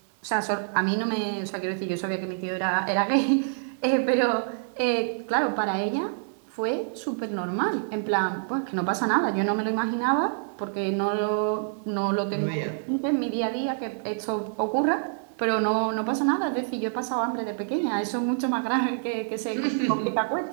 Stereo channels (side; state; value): left; silent; 60 dB below the other